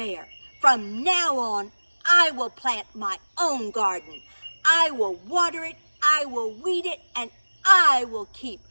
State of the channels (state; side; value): inverted; both; correlation -1.00